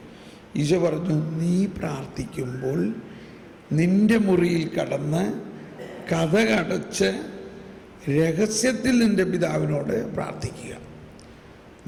ഈശോ പറഞ്ഞു, നീ പ്രാർത്ഥിക്കുമ്പോൾ നിൻ്റെ മുറിയിൽ കടന്ന് കതകടച്ച് രഹസ്യത്തിൽ നിൻ്റെ പിതാവിനോട് പ്രാർത്ഥിക്കുക.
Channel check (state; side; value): identical; both; correlation 1.00